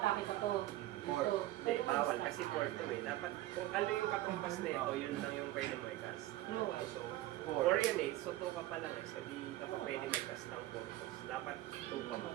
pa to? Four. Ito. Hindi, bawal kasi 4 to eh. Dapat kung ano yung kakumpas na ito, yun lang yung pwede mo i-cast. No. So, 4. 4 yun eh. So 2 ka pa lang eh. So di ka pa pwede mag-cast ng 4 cost. Dapat 2 pa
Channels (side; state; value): left; quieter; 15.9 dB